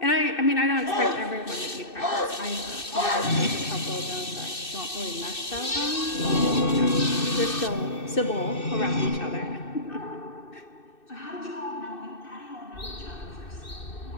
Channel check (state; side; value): late; right; 2.6 ms